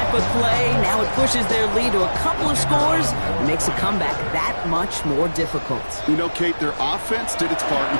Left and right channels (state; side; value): inverted; both; correlation -1.00